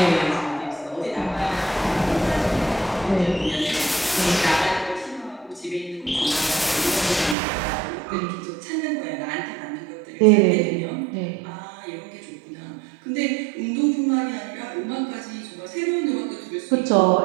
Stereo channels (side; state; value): left; drops out; at 7.4 s